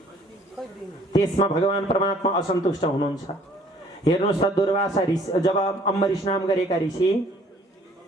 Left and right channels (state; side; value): normal; both; correlation 0.57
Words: त्यसमा भगवान परमात्मा असन्तुष्ट हुनुहुन्छ। हेर्नुहोस् त दुर्वासा ऋषि जब अम्बरीश नाम गरेका ऋषि